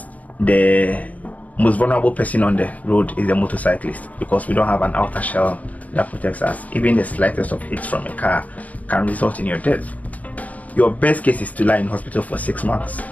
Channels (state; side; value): late; right; 0.073 ms